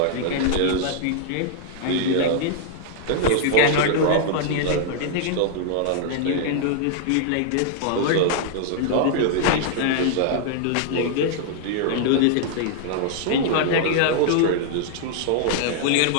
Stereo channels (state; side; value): different; both; correlation 0.00